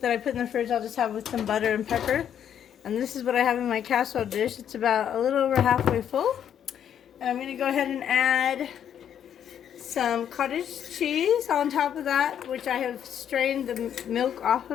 that I put in the fridge, I'll just have with some butter and pepper. And this is what I have in my casserole dish. It's about a little over halfway full. And I'm going to go ahead and add some cottage cheese on top of that, which I have strained the milk off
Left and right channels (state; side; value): quieter; right; 9.3 dB